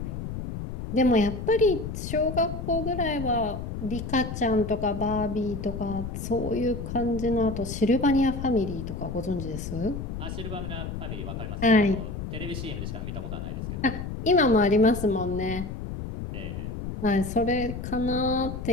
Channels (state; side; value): noise; left; rumble, 6 dB below the sound